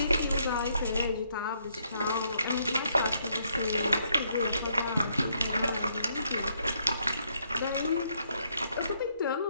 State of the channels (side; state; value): both; inverted; correlation -0.73